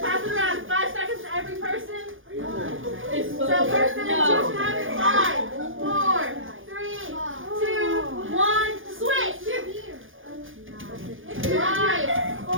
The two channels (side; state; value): left; late; 0.58 ms